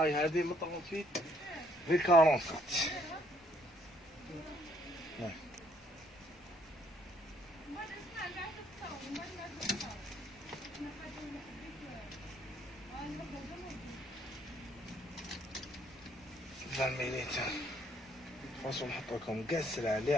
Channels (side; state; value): both; normal; correlation 0.67